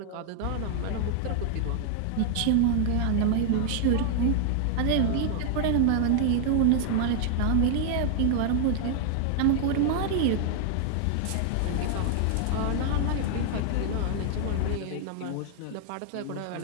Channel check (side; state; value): both; different; correlation 0.00